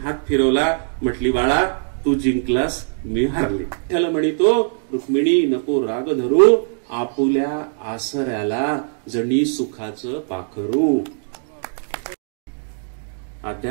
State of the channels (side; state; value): left; silent; digital silence